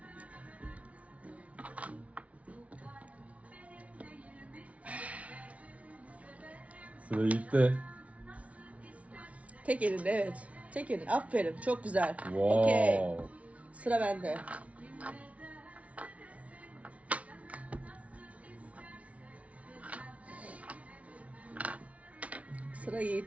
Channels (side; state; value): left; late; 0.066 ms